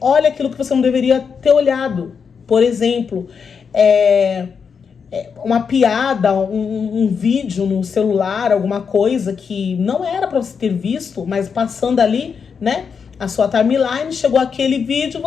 aquilo que você não deveria ter olhado. Por exemplo, uma piada, um vídeo no celular, alguma coisa que não era para você ter visto, mas passando ali, né, a sua timeline, chegou aquele vídeo,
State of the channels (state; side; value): quieter; right; 6.2 dB